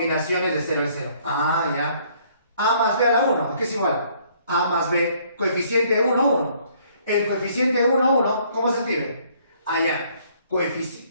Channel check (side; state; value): both; inverted; correlation -0.63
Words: de 0 en 0. Ah, ya. A más b a la 1, ¿qué es igual? A más b, coeficiente 1, 1. El coeficiente 1, 1, ¿cómo se escribe? Allá.